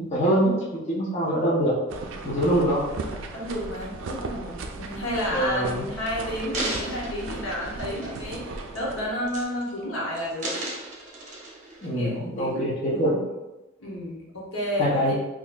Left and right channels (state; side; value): normal; both; correlation 0.28